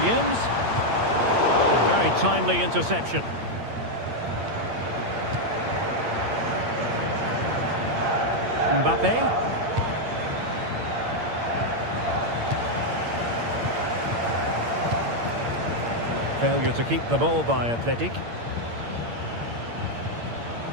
A very timely interception. Mbappe. Failure to keep the ball by Athletic.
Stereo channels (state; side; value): late; left; 8.7 ms